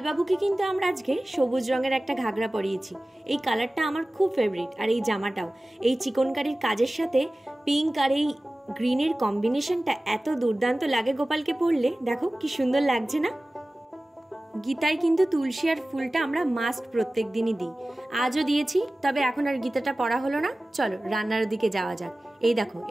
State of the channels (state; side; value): normal; both; correlation 0.97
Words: বাবুকে কিন্তু আমরা আজকে সবুজ রঙের একটা ঘাগরা পরিয়েছি। এই কালারটা আমার খুব ফেভারিট, আর এই জামাটাও এই চিকনকারির কাজের সাথে পিঙ্ক আর এই গ্রিনের কম্বিনেশনটা এত দুর্দান্ত লাগে গোপালকে পরলে। দেখো কি সুন্দর লাগছে না। গীতায় কিন্তু তুলসী আর ফুলটা আমরা মাস্ট প্রত্যেক দিনই দিই। আজও দিয়েছি, তবে এখন আর গীতাটা পড়া হলো না। চলো রান্নার দিকে যাওয়া যাক। এই দেখো,